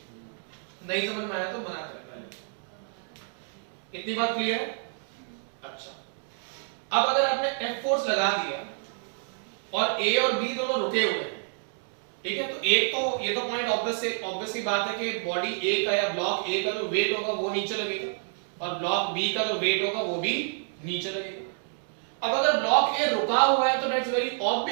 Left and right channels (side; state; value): left; silent; 59 dB below the other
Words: नहीं समझ में आया तो मना करें पहले इतनी बात क्लियर है अच्छा अब अगर आपने एफ फोर्स लगा दिया और ए और बी दोनों रुके हुए हैं ठीक है तो एक तो ये तो पॉइंट ऑब्वियस सी बात है कि बॉडी ए का या ब्लॉक ए का जो वेट होगा वो नीचे लगेगा और ब्लॉक बी का जो वेट होगा वो भी नीचे लगेगा अब अगर ब्लॉक ए रुका हुआ है तो दैट्स वेरी